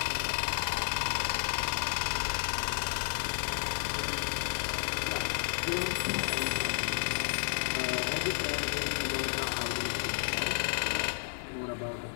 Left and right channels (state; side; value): silent; right; digital silence